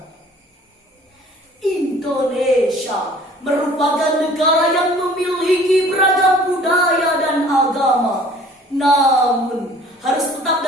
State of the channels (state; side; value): normal; both; correlation 0.51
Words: Indonesia merupakan negara yang memiliki beragam budaya dan agama, namun harus tetap